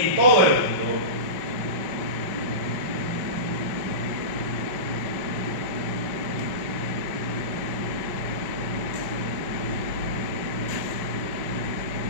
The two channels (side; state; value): left; late; 5.2 ms